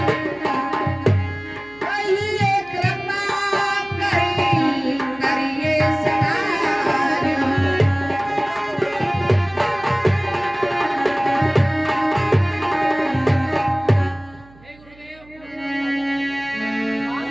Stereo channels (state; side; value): noise; right; hum, 25 dB below the sound